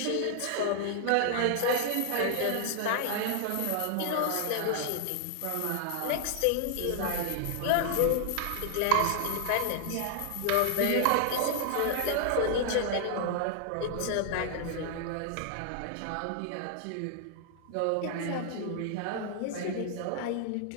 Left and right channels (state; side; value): different; both; correlation 0.00